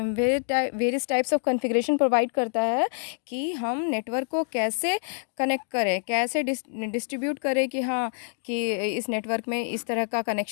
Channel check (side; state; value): right; silent; digital silence